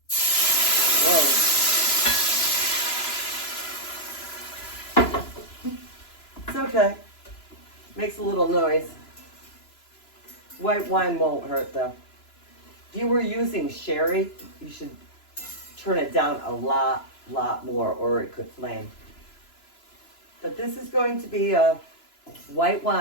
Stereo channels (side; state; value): right; late; 2.9 ms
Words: Whoa. It's okay. Makes a little noise. White wine won't hurt though. If you were using sherry, you should turn it down a lot more or it could flame. But this is going to be a white